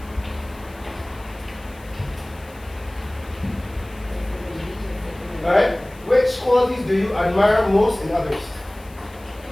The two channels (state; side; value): noise; left; hiss, 25 dB below the sound